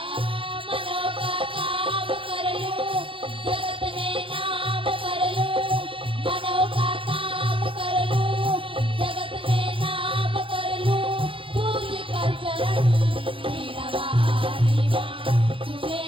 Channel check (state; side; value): late; left; 0.25 ms